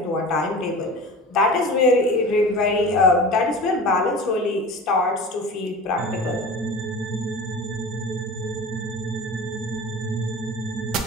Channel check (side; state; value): both; normal; correlation 0.36